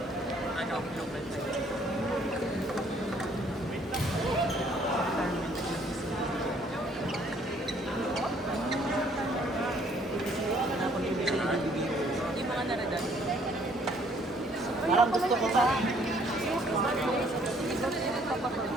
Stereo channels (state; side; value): normal; both; correlation 0.63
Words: Ano, global na. Yung mga naradan. Parang gusto ko sa...